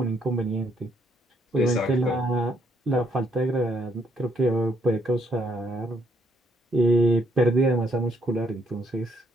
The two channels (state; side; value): normal; both; correlation 0.71